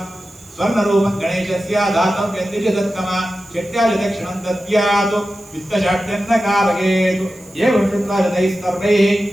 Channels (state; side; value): noise; right; hiss, 25 dB below the sound